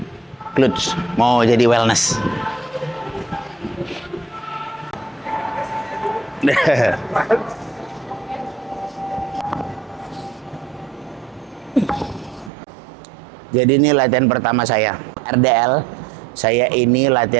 glutes. Mau jadi wellness. Jadi ini latihan pertama saya. RDL, saya ini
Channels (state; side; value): drops out; left; at 12.5 s